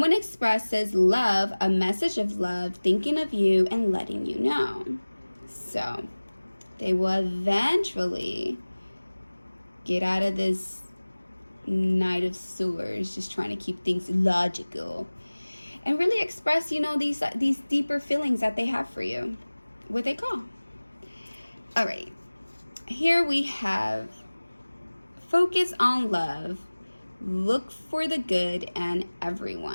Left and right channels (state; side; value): inverted; both; correlation -1.00